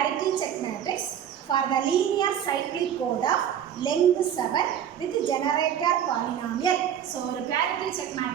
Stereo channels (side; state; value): left; quieter; 9.4 dB